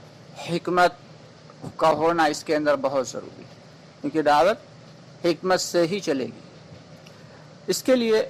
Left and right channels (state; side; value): identical; both; correlation 1.00